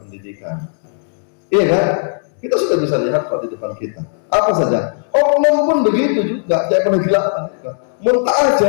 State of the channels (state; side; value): silent; right; digital silence